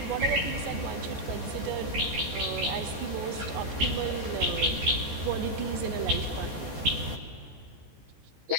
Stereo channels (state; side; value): late; left; 14 ms